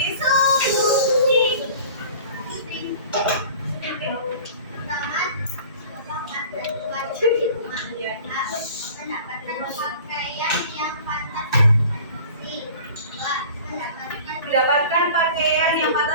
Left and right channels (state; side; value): inverted; both; correlation -0.44